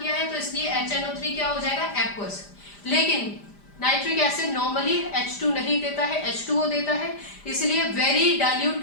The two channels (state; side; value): late; right; 5.0 ms